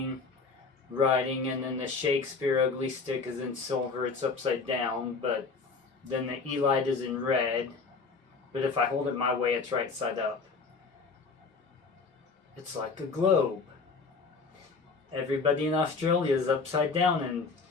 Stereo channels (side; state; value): right; quieter; 4.6 dB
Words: writing, and then the Shakespeare Ugly Stik is in silver. It's upside down, but then the E-light is in red. But if I hold it my way, it's right side up. It's like a globe. Everybody in Australia is upside down, and